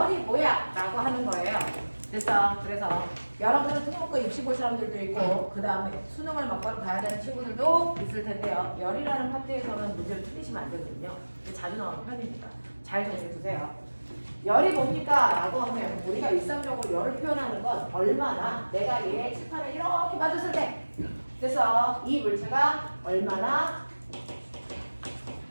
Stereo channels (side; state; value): both; inverted; correlation -1.00